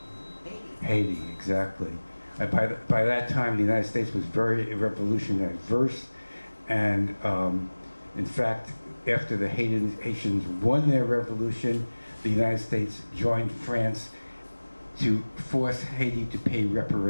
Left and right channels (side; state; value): both; inverted; correlation -1.00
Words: Haiti, exactly. By that time, the United States was very revolution adverse, and in fact, after the Haitians won their revolution, the United States joined France to force Haiti to pay